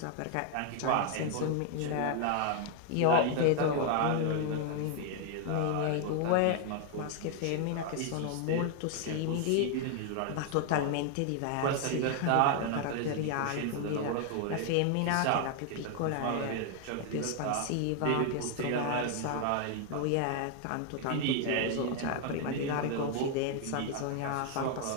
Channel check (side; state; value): both; different; correlation 0.00